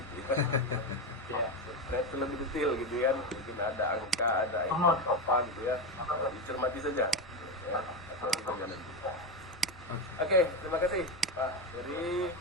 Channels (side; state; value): both; normal; correlation 0.14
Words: ya. Ya, saya itu lebih detail gitu kan. Mungkin ada angka, ada apa gitu ya. Dicermati saja. Ya, cermati saja nanti. Oke, terima kasih Pak Ferry,